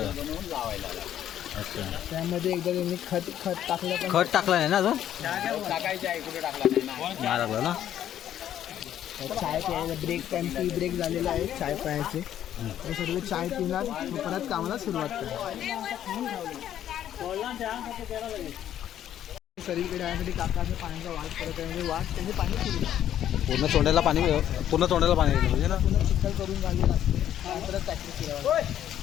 बनवून लावायला अच्छा. त्यामध्ये एकदा त्यांनी खत टाकलं. पण खत टाकलं नाही ना अजून. टाकायचं आहे, कुठे टाकला नाही ना. नाही टाकलं ना. चाय प्यायला ब्रेक टाईम, टी ब्रेक झालेला आहे चाय प्यायचे. हे सर्व चाय पिणार, मग परत कामाला सुरुवात करणार. सगळीकडे यासाठी काकाचं पाण्याचा वाट करत आहे. म्हणजे वाट त्यांनी पाणी सुरू पूर्ण तोंडाला पाणी गेलं पाहिजे ना. पुन्हा चिखल करून घालले लागते. परत ट्रॅक्टर फिरवायला.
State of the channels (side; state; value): right; quieter; 11.0 dB